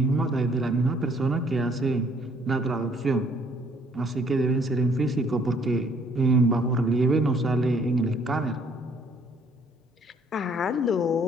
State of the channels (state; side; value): normal; both; correlation 0.62